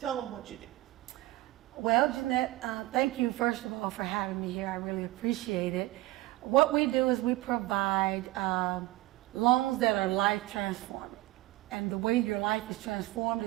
them what you do. Well, Jeanette, thank you first of all for having me here. I really appreciate it. What we do is we provide loans that are life transforming. And the way your life is transformed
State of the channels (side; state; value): left; quieter; 18.4 dB